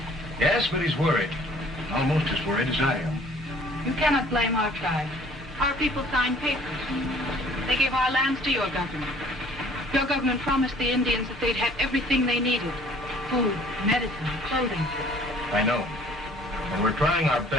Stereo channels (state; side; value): normal; both; correlation 0.55